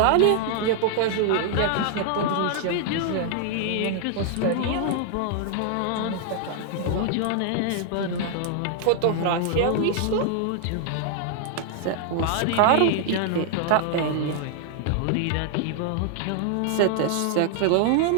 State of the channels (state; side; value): different; both; correlation -0.01